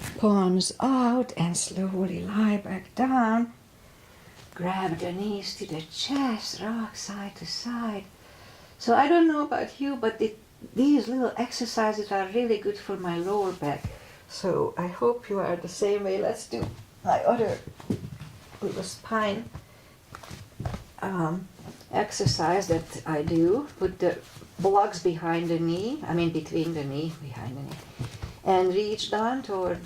palms out, and slowly lie back down. Grab the knees to the chest, rock side to side. So I don't know about you, but these little exercises are really good for my lower back. So I hope you are the same way. Let's do my other little spine exercise that I do. Put the blocks behind the knee, between the knee, behind the knee, and reach down toward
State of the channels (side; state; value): both; identical; correlation 1.00